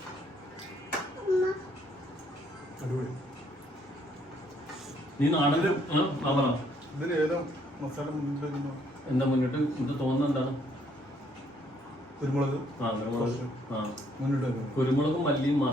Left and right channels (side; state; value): both; normal; correlation 0.67